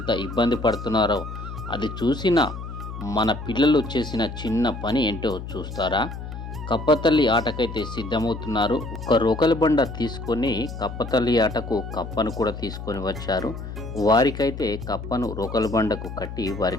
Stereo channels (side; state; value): left; noise; hum, 9 dB below the sound